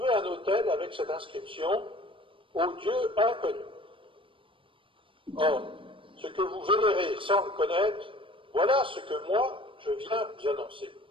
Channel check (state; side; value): late; left; 0.25 ms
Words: un autel avec cette inscription « Au Dieu inconnu ». Or, ce que vous vénérez sans le connaître, voilà ce que moi, je viens vous annoncer.